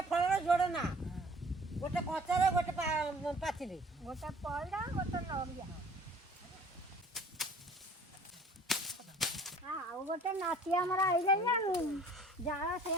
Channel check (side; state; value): both; normal; correlation 0.51